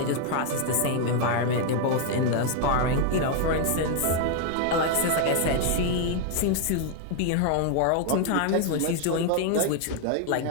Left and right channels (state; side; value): different; both; correlation 0.00